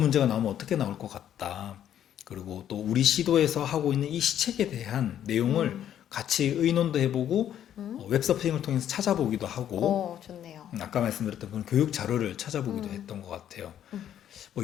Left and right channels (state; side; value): quieter; right; 10.5 dB